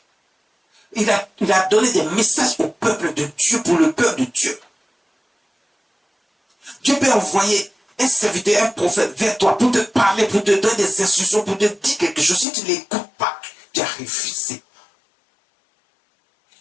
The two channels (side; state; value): right; drops out; at 12.5 s